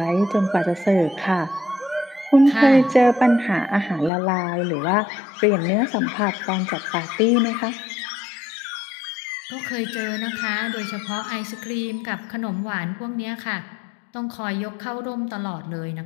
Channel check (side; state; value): right; drops out; at 4.1 s